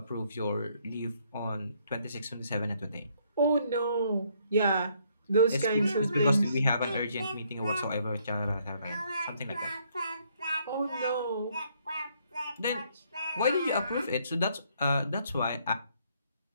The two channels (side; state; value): both; inverted; correlation -0.69